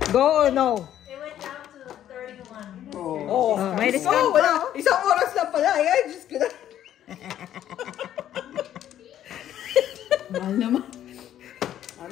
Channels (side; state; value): right; quieter; 11.3 dB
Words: Go or no? It went down to 31. Oo. Oh, may discount Oh, wala. pa. Isang oras lang pala. Ay, Diyos ko na. Mahal naman.